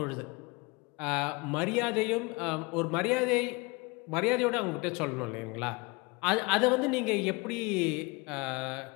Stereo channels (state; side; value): quieter; right; 26.5 dB